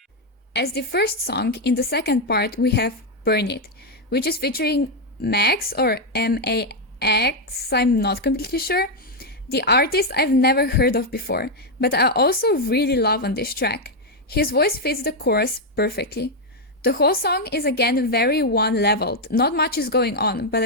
As the first song, in the second part we have Burn It, which is featuring Max or M-A-X, I'm not completely sure. The artist I've never heard of before, but I also really love on this track. His voice fits the chorus perfectly. The whole song is again very one-leveled, not much is going on, but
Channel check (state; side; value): normal; both; correlation 0.02